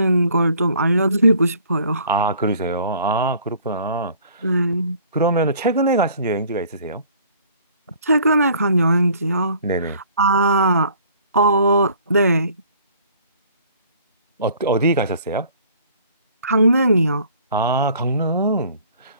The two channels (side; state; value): both; inverted; correlation -0.55